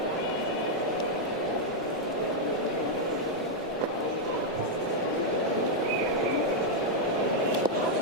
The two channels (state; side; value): normal; both; correlation -0.02